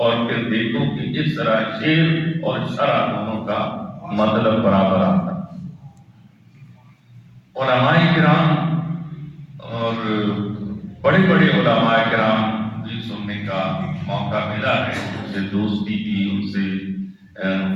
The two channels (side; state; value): both; identical; correlation 1.00